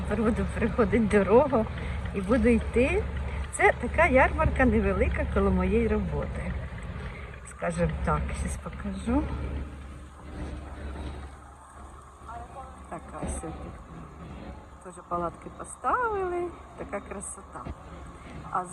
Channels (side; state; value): both; identical; correlation 1.00